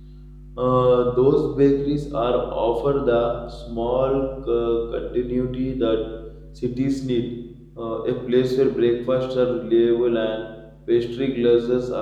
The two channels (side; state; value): both; identical; correlation 1.00